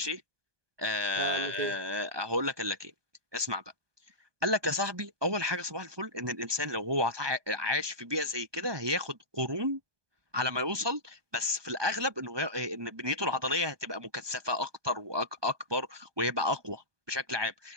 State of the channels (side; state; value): left; late; 1.2 ms